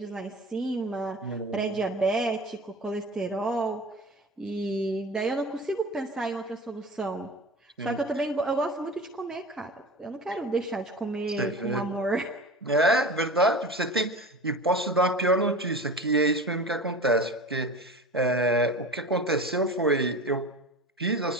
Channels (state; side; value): normal; both; correlation 0.34